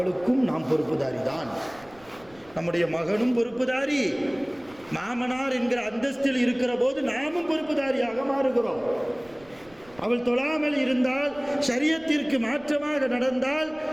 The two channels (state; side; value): noise; right; rumble, 26 dB below the sound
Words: நாம் பொறுப்புதாரி தான். நம்முடைய மகனும் பொறுப்புதாரி, மாமனார் என்கிற அந்தஸ்தில் இருக்கிற போது நாமும் பொறுப்புதாரியாக மாறுகிறோம். அவள் தொழாமல் இருந்தால், ஷரியத்திற்கு மாற்றமாக நடந்தால்,